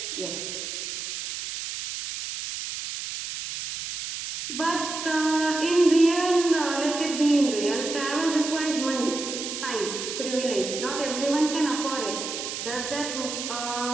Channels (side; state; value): right; noise; hiss, 6 dB below the sound